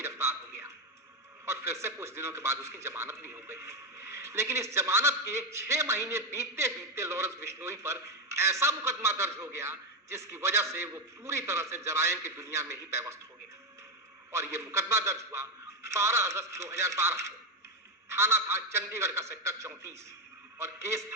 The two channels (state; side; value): normal; both; correlation 0.09